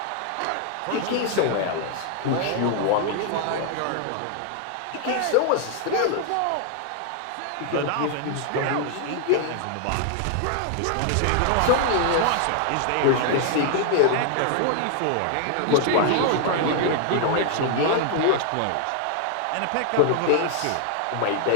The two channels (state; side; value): different; both; correlation 0.00